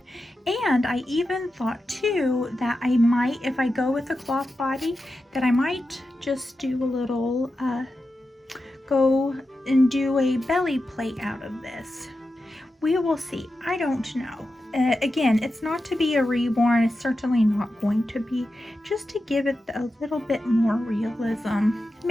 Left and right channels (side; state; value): both; normal; correlation 0.90